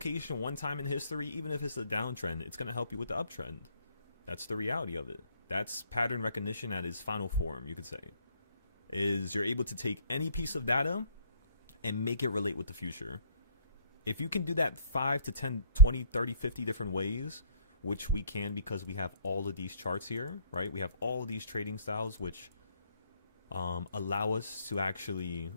one time in history, even if it's a downtrend, it's going to help you with the uptrend. That's the reality of it. That's pattern recognition at its final form, you could say. Is you're able to take any piece of data and make it relate with the future. If you can do that 5 to 10, 20, 30, 50 different ways, which we can because we have all of these charts here, right? We have all of these trading styles, which allow us to actually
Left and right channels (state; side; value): inverted; both; correlation -0.57